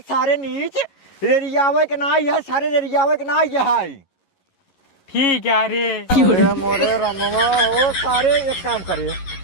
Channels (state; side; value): late; right; 11 ms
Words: सारे नीच रेडियावे के ना ये सारे रेडियावे के ना ये है ठीक है रे अरे मोरे रमवा हो सारे एक काम करे